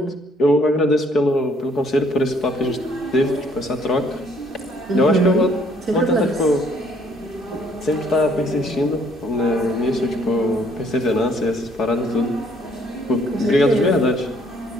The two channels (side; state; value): both; normal; correlation 0.64